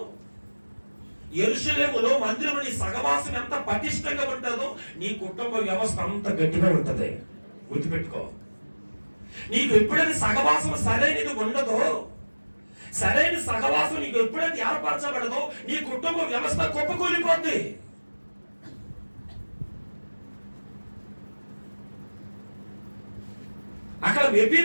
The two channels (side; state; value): both; inverted; correlation -1.00